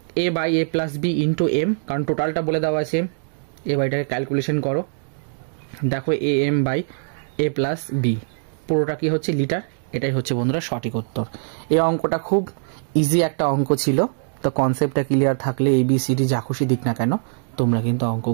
A/A+B ইন্টু M, কারণ টোটালটা বলে দেওয়া আছে। এটাকে ক্যালকুলেশন করো, দেখো AM/A+B পুরোটা কি হচ্ছে লিটার। এটাই হচ্ছে বন্ধুরা সঠিক উত্তর। এই অঙ্কটা খুব ইজি একটা অঙ্ক ছিল। তো কনসেপ্টটা ক্লিয়ার থাকলে ABCD যা খুশি দিক না কেন তোমরা কিন্তু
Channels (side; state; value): left; silent; digital silence